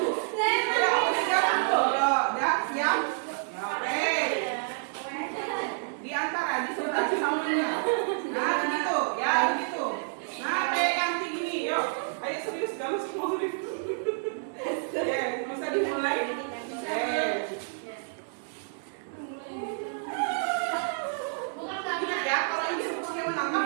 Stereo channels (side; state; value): left; silent; 59 dB below the other